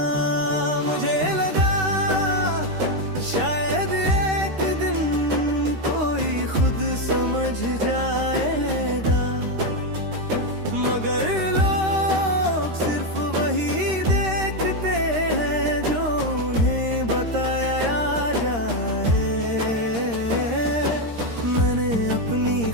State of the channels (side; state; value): left; late; 13 ms